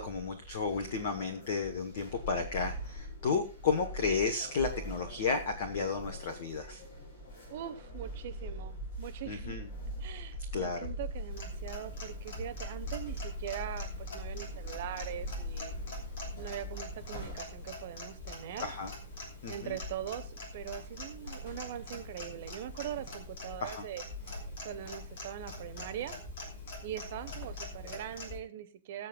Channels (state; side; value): inverted; both; correlation -0.38